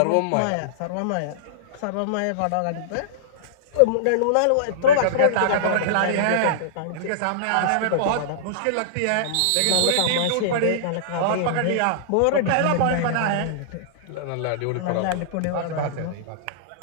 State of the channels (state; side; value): different; both; correlation -0.02